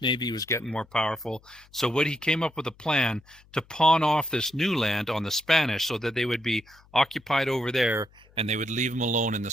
Navy was getting more powerful. So he came up with a plan to pawn off this new land on the Spanish so that they would be occupied over there and they would leave him alone in the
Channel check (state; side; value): noise; left; hum, 28 dB below the sound